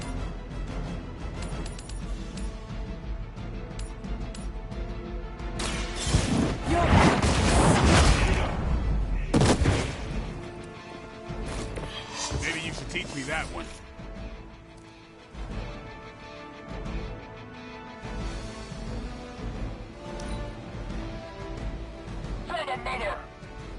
Maybe you should teach me that one. For the mother!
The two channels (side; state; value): both; identical; correlation 1.00